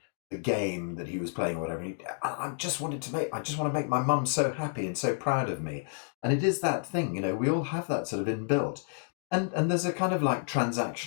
the game that he was playing or whatever. I just want to make my mum so happy and so proud of me, and it is that thing, we all have that sort of inbuilt, and there's a kind of like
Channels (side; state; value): right; silent; 58 dB below the other